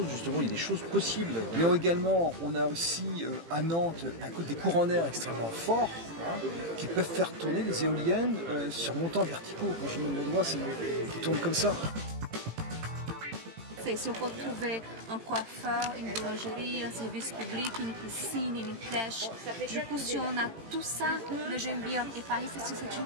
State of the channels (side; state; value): left; late; 18 ms